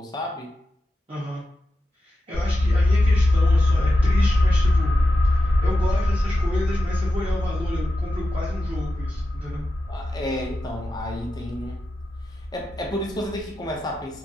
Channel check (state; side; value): normal; both; correlation 0.91